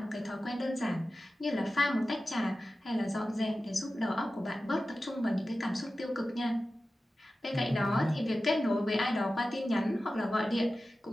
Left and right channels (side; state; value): both; normal; correlation 0.94